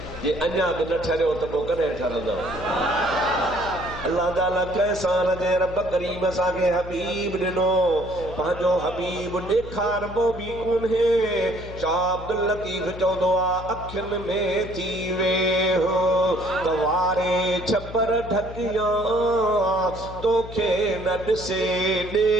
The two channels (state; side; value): noise; left; hum, 13 dB below the sound